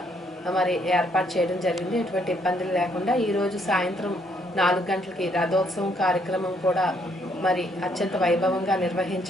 ఏర్పాటు చేయడం జరిగింది. ఎటువంటి ఇబ్బందులు లేకుండా ఈరోజు సాయంత్రం 4 గంటలకి రథోత్సవం కార్యక్రమం కూడా అత్యంత వైభవంగా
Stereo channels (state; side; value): normal; both; correlation 0.70